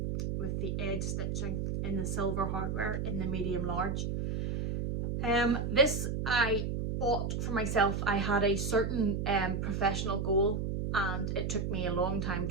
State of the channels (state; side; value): noise; right; hum, 1 dB below the sound